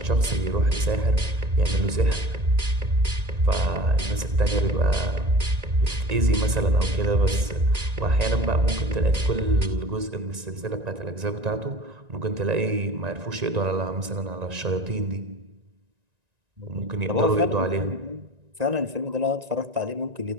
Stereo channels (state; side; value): late; left; 1.9 ms